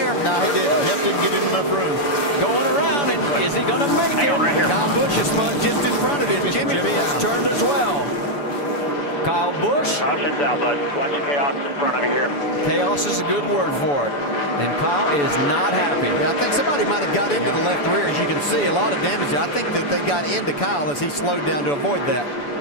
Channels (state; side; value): late; right; 7.0 ms